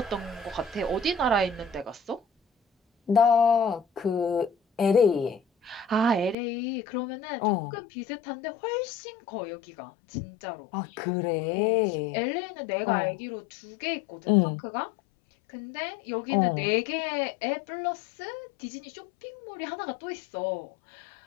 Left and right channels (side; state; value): right; drops out; at 6.4 s